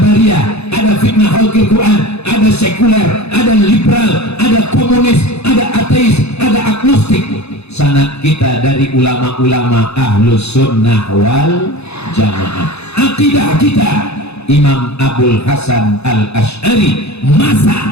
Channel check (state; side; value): late; right; 0.80 ms